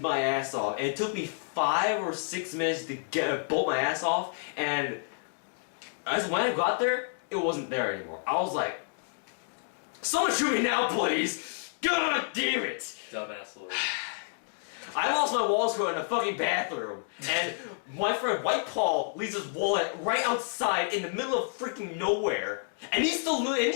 my ass off, and it took me 5 or 6 minutes to bolt my ass off, and as when I got there, it wasn't there anymore. I was like, someone shoot me now, please! God damn it! Dumbass Lord. I lost my wall screw in a fucking bathroom, and my friend White Paul leaves his wallet right outside in the middle of freaking nowhere, and he still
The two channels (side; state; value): right; silent; digital silence